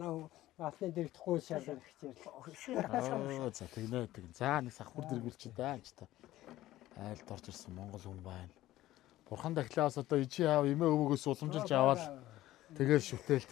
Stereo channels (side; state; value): right; quieter; 15.4 dB